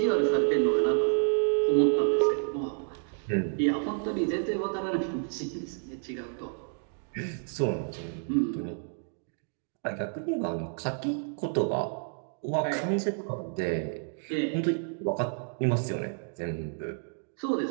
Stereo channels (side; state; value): left; silent; 58 dB below the other